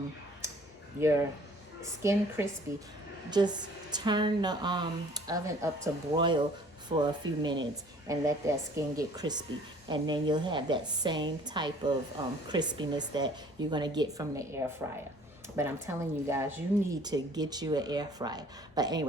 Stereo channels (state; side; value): normal; both; correlation 0.53